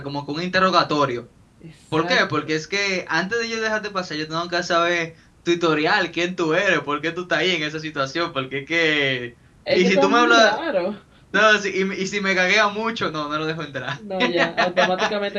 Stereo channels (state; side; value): identical; both; correlation 1.00